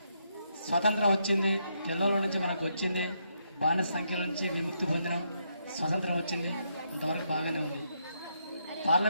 స్వాతంత్రం వచ్చింది, తెల్లల నుంచి మనకు వచ్చింది, బానిస సంఖ్యల నుంచి విముక్తి పొందినాం, స్వతంత్రం వచ్చింది, అంతవరకు బాగానే ఉంది.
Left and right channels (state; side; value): inverted; both; correlation -0.78